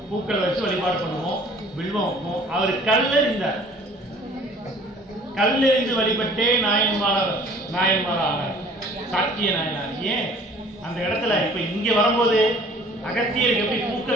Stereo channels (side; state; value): both; normal; correlation 0.52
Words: பூக்கள் வச்சு வழிபாடு பண்ணுவோம், வில்வம் வைப்போம். அவர் கல்லெறிந்தார். கல்லெறிந்து வழிபட்டே நாயன்மார் ஆனார், சாக்கிய நாயனார். ஏன் அந்த இடத்துல இப்ப இங்க வரும்போது அகத்தியருக்கு எப்படி